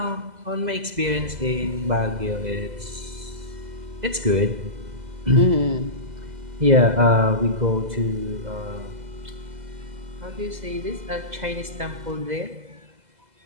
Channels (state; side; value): late; left; 2.0 ms